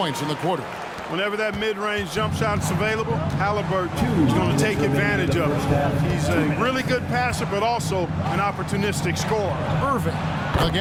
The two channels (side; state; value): both; identical; correlation 1.00